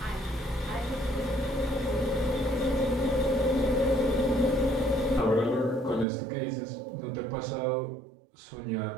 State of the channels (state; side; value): drops out; left; at 6.1 s